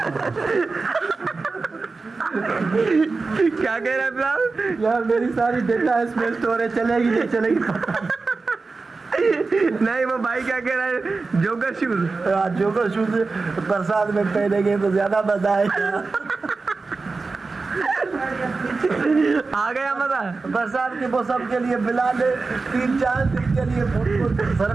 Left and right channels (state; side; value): quieter; left; 4.0 dB